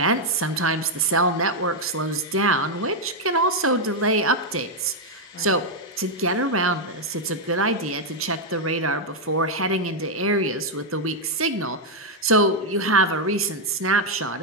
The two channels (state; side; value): normal; both; correlation 0.00